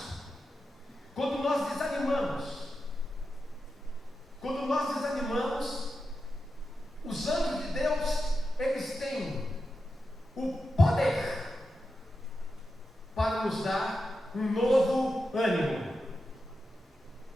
Quando nós desanimamos. Quando nós desanimamos, os anjos de Deus, eles têm o poder para nos dar um novo ânimo.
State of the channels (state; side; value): normal; both; correlation 0.90